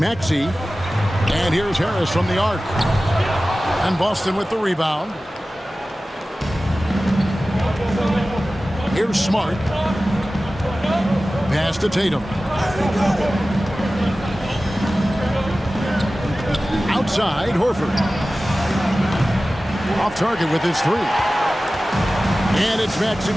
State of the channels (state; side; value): normal; both; correlation 0.96